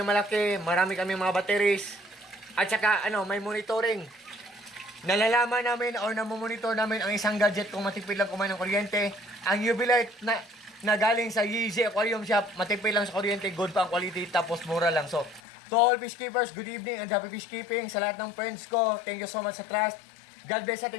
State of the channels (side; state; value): right; drops out; at 15.4 s